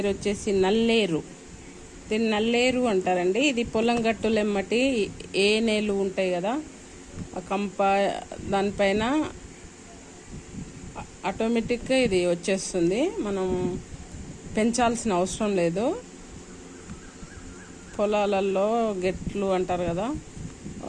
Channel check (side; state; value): both; identical; correlation 1.00